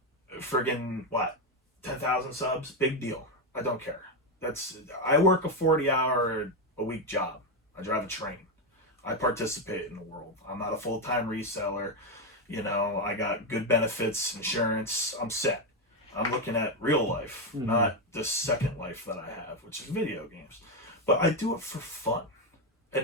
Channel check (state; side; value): normal; both; correlation 0.07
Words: friggin' 10,000 subs. Big deal. I don't care. I work a 40-hour a week job. I drive a train. I participate in the world. I'm not a full-time reseller. You know, I got good benefits, insurance. I'm set. I'm looking at real life, not the second life that I have, which is video games. But I do it for fun,